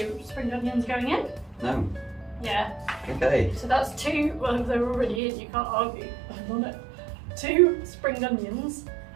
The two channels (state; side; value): drops out; left; at 5.2 s